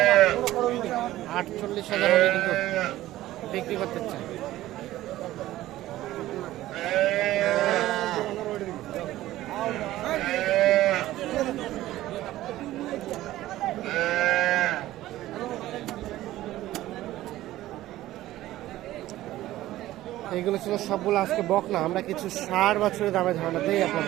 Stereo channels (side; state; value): left; quieter; 15.3 dB